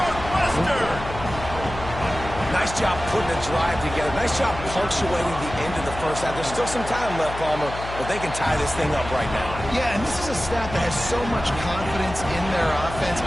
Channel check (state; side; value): noise; left; hum, 10 dB below the sound